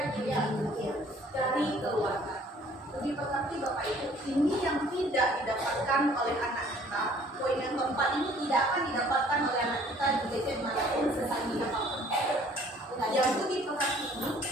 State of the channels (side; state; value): both; normal; correlation 0.56